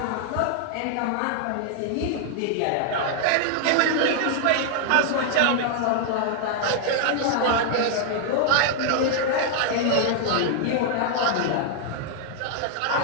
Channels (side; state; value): both; different; correlation 0.00